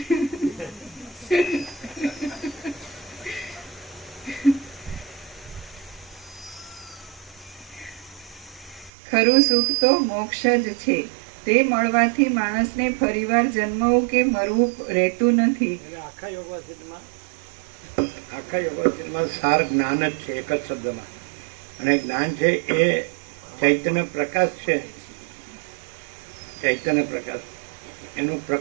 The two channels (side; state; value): left; drops out; at 8.9 s